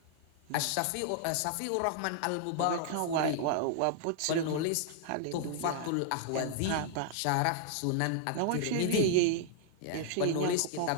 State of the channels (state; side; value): different; both; correlation -0.01